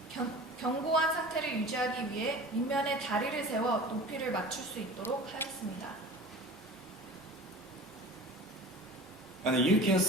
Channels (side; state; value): both; normal; correlation 0.39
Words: 견고한 상태를 유지하기 위해 밑면에 다리를 세워 높이를 맞출 수 있도록 하였습니다. And you can